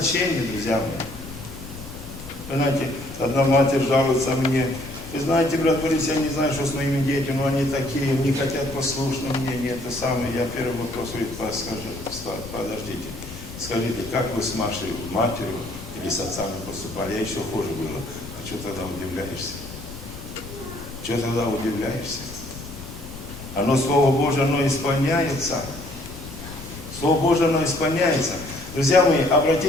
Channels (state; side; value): noise; left; rumble, 13 dB below the sound